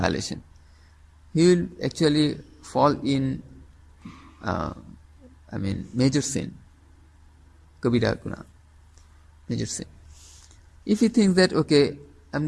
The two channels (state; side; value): identical; both; correlation 1.00